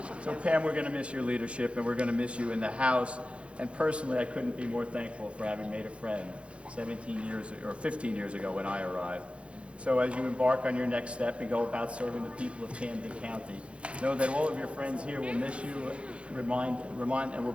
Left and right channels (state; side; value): late; left; 0.060 ms